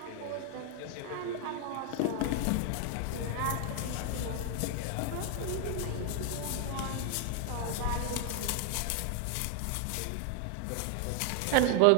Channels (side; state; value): both; different; correlation 0.00